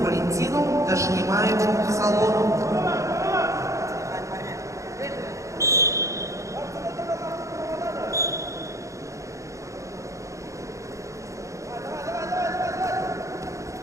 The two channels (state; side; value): late; left; 0.15 ms